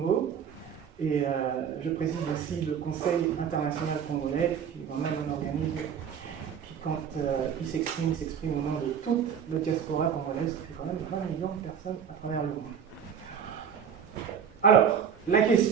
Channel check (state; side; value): quieter; left; 7.8 dB